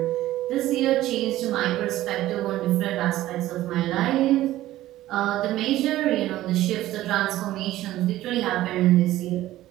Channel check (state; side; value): quieter; left; 15.1 dB